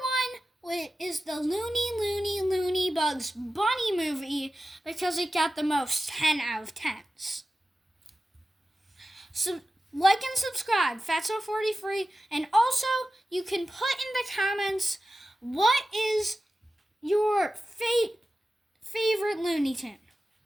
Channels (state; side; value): normal; both; correlation 0.94